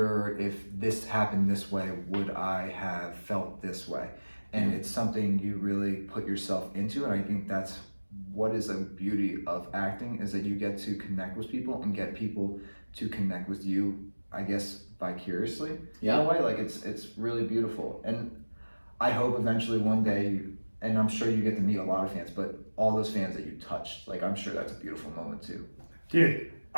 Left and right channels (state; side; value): inverted; both; correlation -1.00